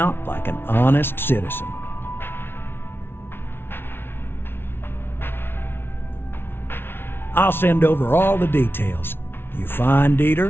like an honest citizen. I'll send over all the details. You find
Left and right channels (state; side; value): late; right; 0.11 ms